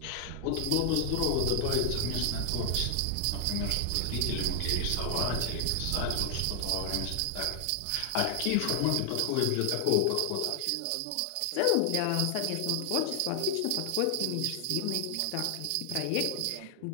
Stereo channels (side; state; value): both; different; correlation 0.00